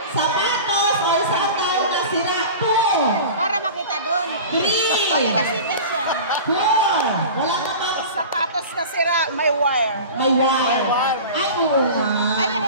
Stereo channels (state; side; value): inverted; both; correlation -0.36